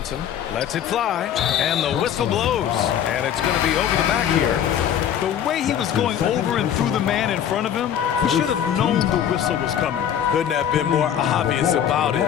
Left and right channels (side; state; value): right; quieter; 9.5 dB